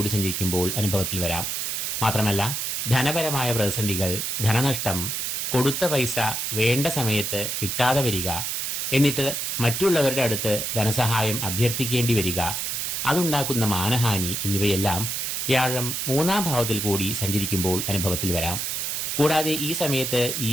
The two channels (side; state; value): right; noise; hiss, 2 dB below the sound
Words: സഞ്ചരിക്കുമ്പോൾ അനുഭവത്തിൽ വരാം. മാത്രമല്ല ധനപരമായ പ്രതിസന്ധികൾ, ധനനഷ്ടം, കൊടുത്ത പൈസ വേണ്ട സമയത്ത് കിട്ടാതെ വരിക, എന്നിട്ട് മറ്റുള്ളവരുടെ അടുത്ത് ധനസഹായം അഭ്യർത്ഥിക്കേണ്ടി വരിക, അതുണ്ടാക്കുന്ന മാനഹാനി എന്നിവയെല്ലാം വ്യാഴം 3-ാം ഭാവത്തിൽ കൂടി സഞ്ചരിക്കുമ്പോൾ അനുഭവത്തിൽ വരാം. കൂടാതെ ഈ സമയത്ത്